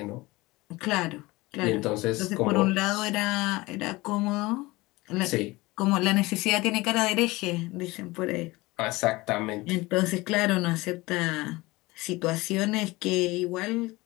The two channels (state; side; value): quieter; right; 21.5 dB